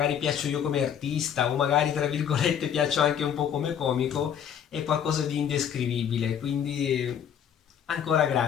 piaccio io come artista, o magari tra virgolette piaccio anche un po' come comico, è qualcosa di indescrivibile. Quindi ancora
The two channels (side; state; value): right; quieter; 8.7 dB